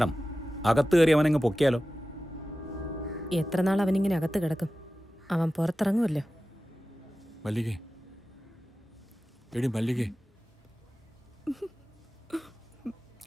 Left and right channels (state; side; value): normal; both; correlation 0.95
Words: അകത്ത് കയറി അവനങ്ങ് പൊക്കിയാലോ? എത്ര നാൾ അവനിങ്ങനെ അകത്ത് കിടക്കും? അവൻ പുറത്തിറങ്ങുമല്ലോ. മല്ലികേ, എടി മല്ലികേ,